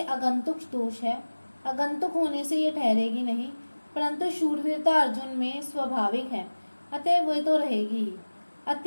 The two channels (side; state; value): both; inverted; correlation -1.00